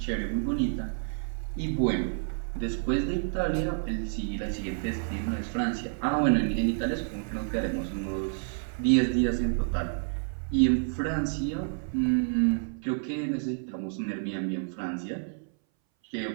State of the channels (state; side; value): silent; left; 58 dB below the other